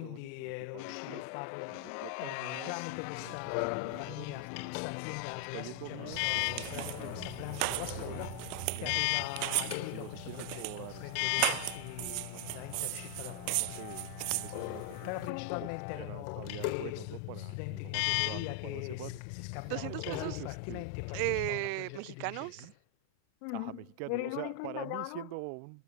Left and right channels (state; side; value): different; both; correlation 0.00